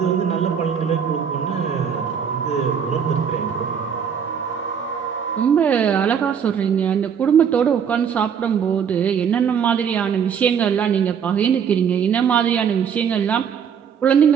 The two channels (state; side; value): quieter; left; 7.5 dB